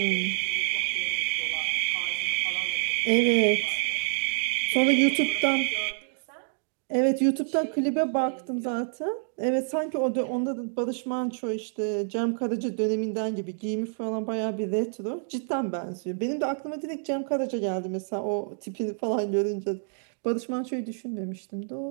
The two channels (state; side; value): silent; left; digital silence